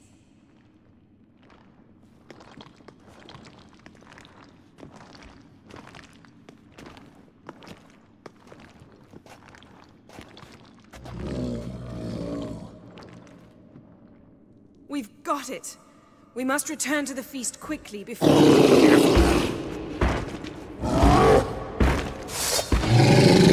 We've got it. We must return to the feast quickly before... It's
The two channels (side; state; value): both; identical; correlation 1.00